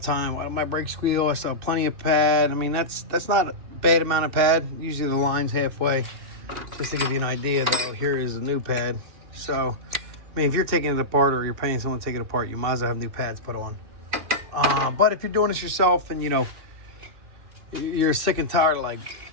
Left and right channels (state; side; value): late; left; 2.9 ms